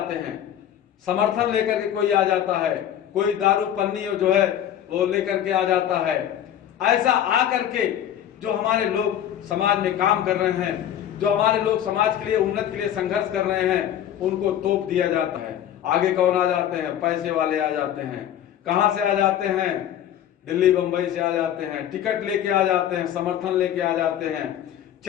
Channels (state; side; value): quieter; right; 10.7 dB